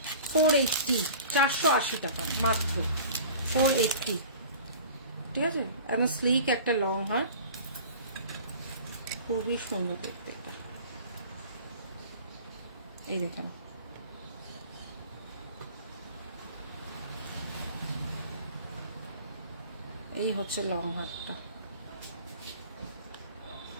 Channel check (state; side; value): inverted; both; correlation -0.42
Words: 480, 480 টাকা মাত্র, 480। ঠিক আছে, এবং স্লিক একটা লং হার, খুবই সুন্দর দেখতে এটা। এই দেখেন, এই হচ্ছে লং হারটা।